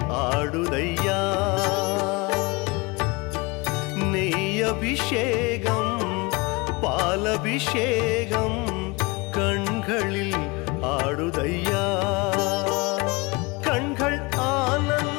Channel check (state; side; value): quieter; right; 26.0 dB